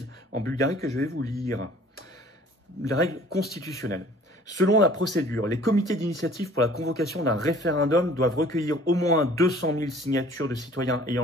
en Bulgarie que je vais vous lire. Les règles constitutionnelles. Selon la procédure, les comités d'initiative pour la convocation d'un référendum doivent recueillir au moins 200 000 signatures de citoyens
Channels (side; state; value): both; normal; correlation 0.51